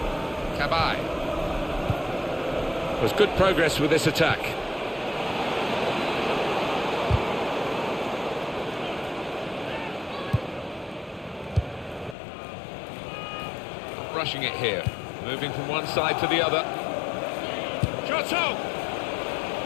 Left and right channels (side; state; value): right; drops out; at 12.2 s